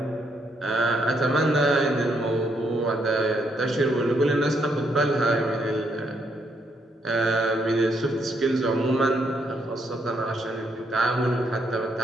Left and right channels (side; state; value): both; normal; correlation 0.74